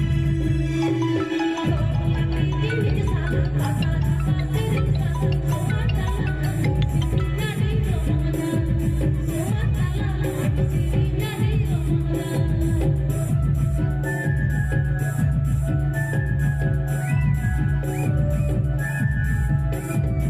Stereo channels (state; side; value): identical; both; correlation 1.00